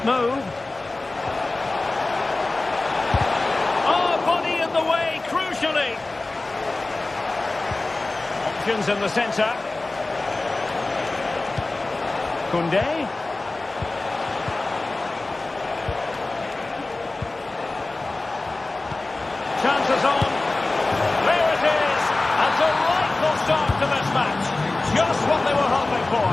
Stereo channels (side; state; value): right; quieter; 3.1 dB